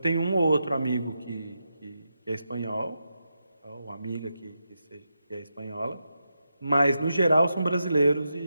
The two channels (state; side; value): inverted; both; correlation -0.87